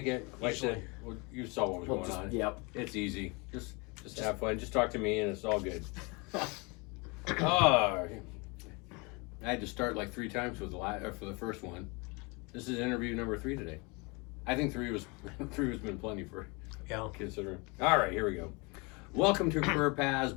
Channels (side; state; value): right; quieter; 28.8 dB